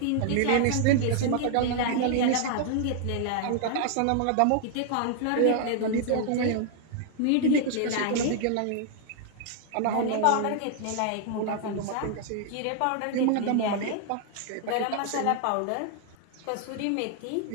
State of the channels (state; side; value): different; both; correlation -0.01